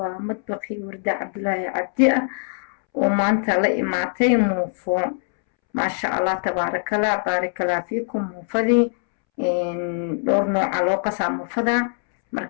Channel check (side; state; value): right; silent; 64 dB below the other